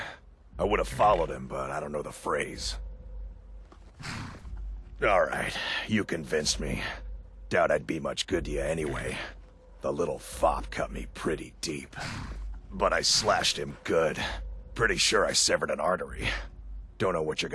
I would have followed him, but I don't know the phrase. Alright, you convinced me. Doubt I'd be much good to you anyway. The little fop cut me pretty deep. But I slashed him good. Pretty sure I severed an artery. Don't know what you're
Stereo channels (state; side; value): identical; both; correlation 1.00